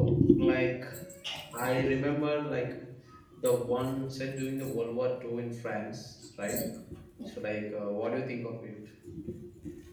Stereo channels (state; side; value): identical; both; correlation 1.00